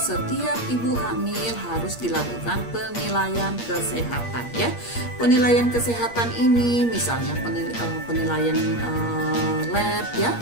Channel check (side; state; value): right; late; 8.5 ms